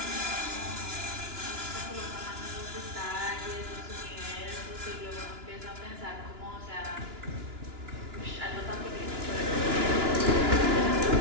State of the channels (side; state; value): left; late; 2.9 ms